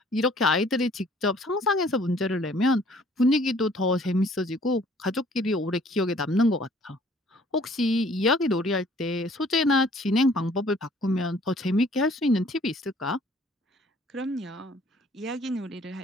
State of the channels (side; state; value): both; normal; correlation 0.57